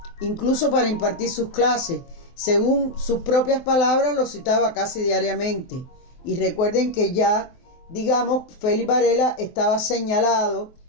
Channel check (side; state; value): right; late; 23 ms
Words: incluso para impartir sus clases. Según sus propias palabras, lo citaba casi diariamente. Y recuerden que ya, digamos, Félix Varela estaba señalado